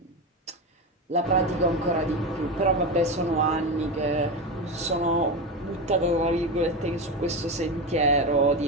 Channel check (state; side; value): normal; both; correlation 0.18